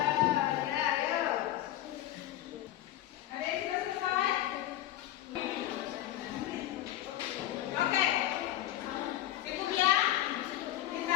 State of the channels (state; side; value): quieter; right; 13.8 dB